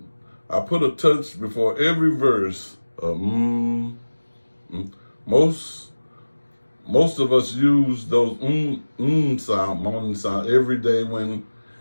touch before every verse. Most of us use those sound, moaning sound every day when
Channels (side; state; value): both; inverted; correlation -1.00